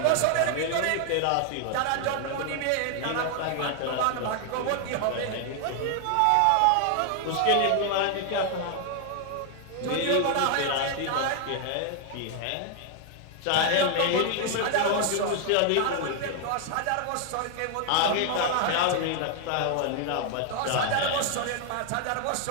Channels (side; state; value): both; different; correlation 0.00